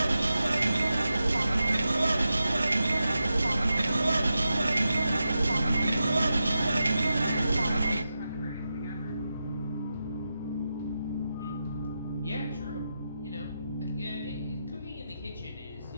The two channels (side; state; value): both; inverted; correlation -0.89